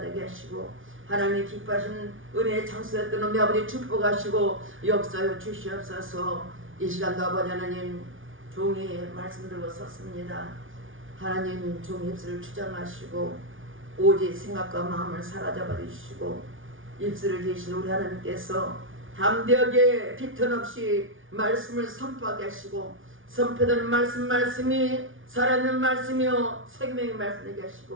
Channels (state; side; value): late; left; 0.57 ms